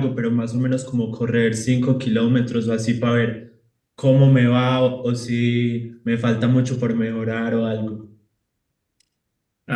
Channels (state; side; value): identical; both; correlation 1.00